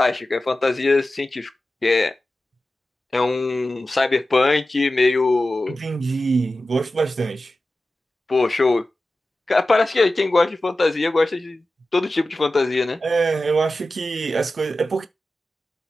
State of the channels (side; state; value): both; normal; correlation 0.94